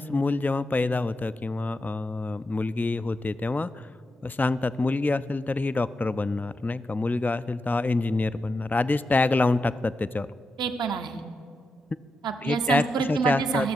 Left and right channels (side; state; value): both; normal; correlation 0.87